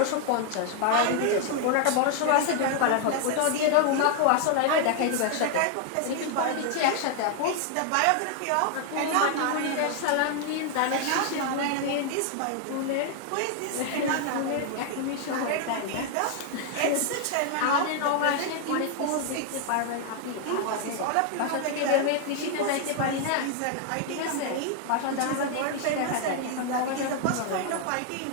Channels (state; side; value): different; both; correlation 0.00